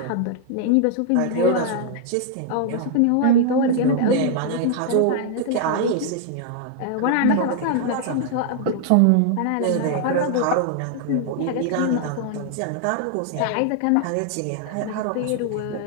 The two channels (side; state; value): both; different; correlation 0.00